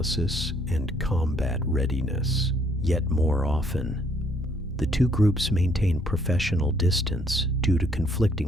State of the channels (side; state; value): both; normal; correlation 0.66